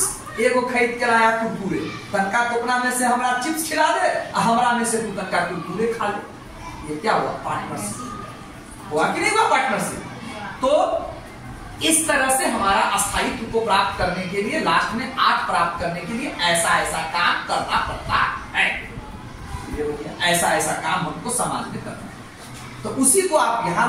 एगो खरीद के लाया कुरकुरे, तनका टोकना में से हमरा चिप्स खिला दे, हमरा में से तू तनका कुरकुरे खा ले। ये क्या हुआ, पार्टनरशिप हुआ कि नहीं हुआ पार्टनरशिप। तो इस तरह से हमारा अस्थायित्व को प्राप्त करने के लिए, लास्ट में 8 प्राप्त करने के लिए ऐसा ऐसा काम करना पड़ता है। ये हो गया, ऐसा ऐसा काम हमको समाज में करना है। तो उसी को आप यहां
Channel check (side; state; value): both; identical; correlation 1.00